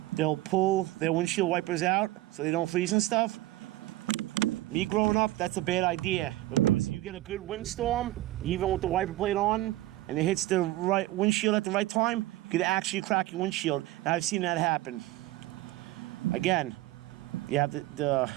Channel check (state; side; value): quieter; left; 17.0 dB